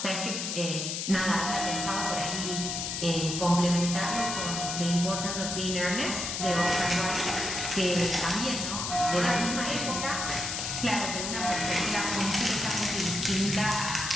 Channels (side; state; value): left; noise; hiss, 3 dB below the sound